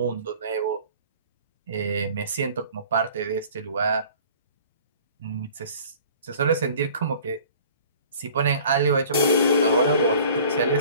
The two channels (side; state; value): both; inverted; correlation -0.48